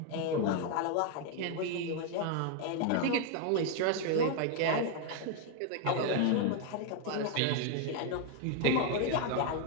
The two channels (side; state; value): both; different; correlation 0.01